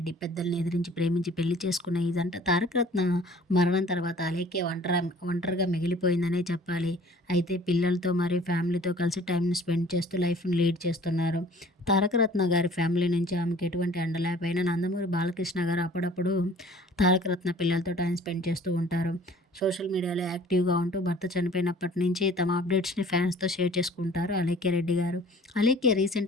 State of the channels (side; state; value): both; normal; correlation 0.50